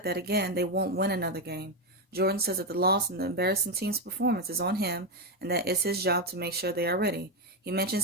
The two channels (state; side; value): normal; both; correlation 0.07